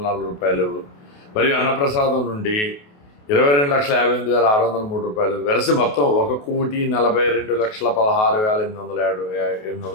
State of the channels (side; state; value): right; late; 28 ms